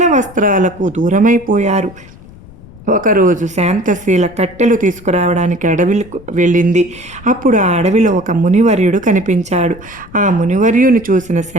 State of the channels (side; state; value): left; noise; rumble, 21 dB below the sound